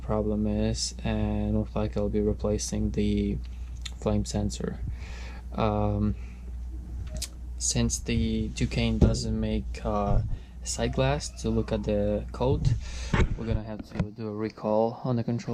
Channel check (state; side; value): identical; both; correlation 1.00